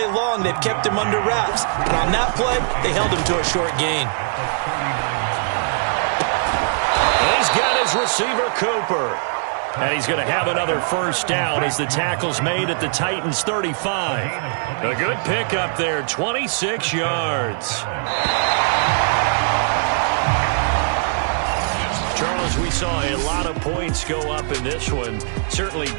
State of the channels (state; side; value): silent; left; digital silence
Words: long they've kept him under wraps. And on that play, they held him to a short gain. And he's got his receiver, Cooper. And he's going to have another 1st down as the tackle's made at the Titans' 35. A good pickup there, 26 yards. Charles, we saw a lot of points go up in this one. Certainly